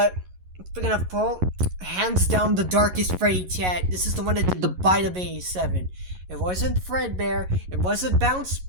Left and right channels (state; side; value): late; left; 11 ms